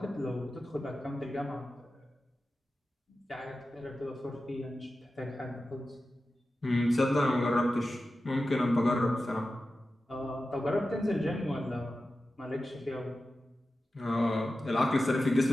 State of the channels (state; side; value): normal; both; correlation 0.93